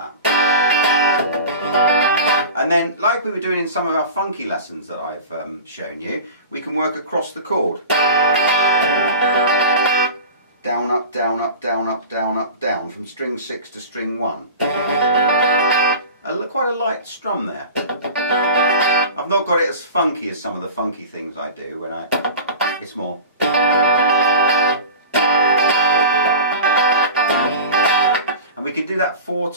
And then, like we were doing in some of our funky lessons that I've shown you, we can work across the chord. Down, up, down, up, down, up, down, up, down, from string 6 to string 1. Quite a light strum there. I've not got it as funky as some of the funky things I do when it's more. And we can do that 4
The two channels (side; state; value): both; inverted; correlation -0.36